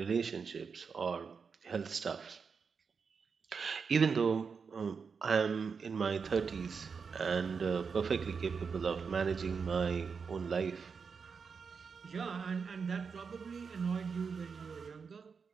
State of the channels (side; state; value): left; quieter; 5.6 dB